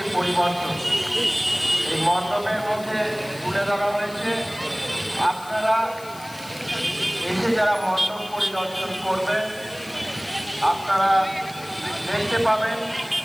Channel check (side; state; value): left; noise; hiss, 19 dB below the sound